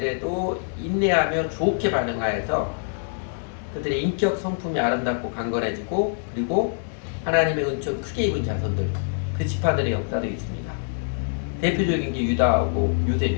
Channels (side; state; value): right; silent; digital silence